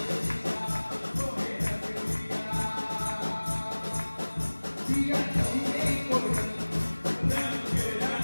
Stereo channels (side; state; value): both; inverted; correlation -1.00